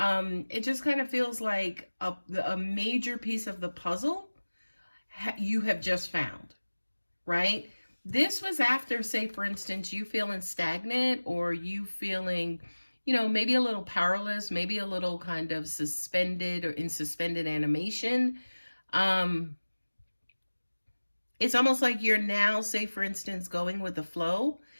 It just kind of feels like a major piece of the puzzle you have just found, right? This was after, say, for instance, you feeling stagnant or you feeling, maybe a little powerless, maybe a little kind of suspended or in suspended animation. It's almost like you're now, say, for instance, going with the flow.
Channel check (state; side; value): inverted; both; correlation -1.00